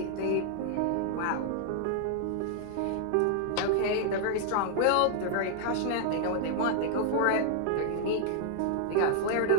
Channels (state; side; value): different; both; correlation 0.00